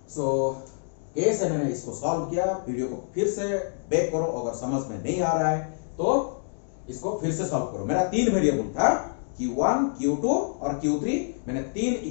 सो कैसे मैंने इसको सॉल्व किया, वीडियो को फिर से बैक करो, अगर समझ में नहीं आ रहा है तो इसको फिर से सॉल्व करो। मेरा 3 वेरिएबल था, Q1, Q2 और Q3, मैंने 3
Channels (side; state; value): right; silent; digital silence